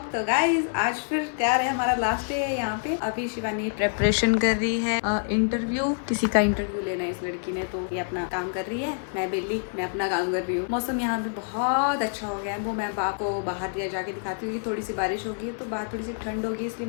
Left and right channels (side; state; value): right; silent; 60 dB below the other